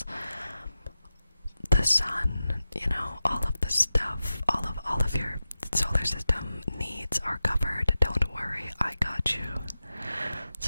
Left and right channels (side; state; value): both; inverted; correlation -0.93